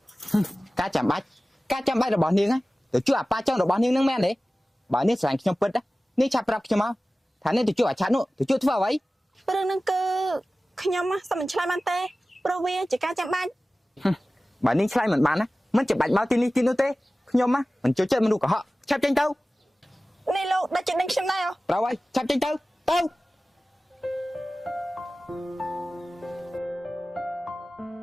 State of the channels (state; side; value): normal; both; correlation 0.97